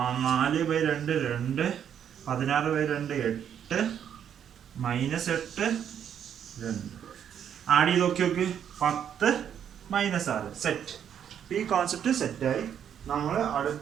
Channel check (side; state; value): left; quieter; 8.9 dB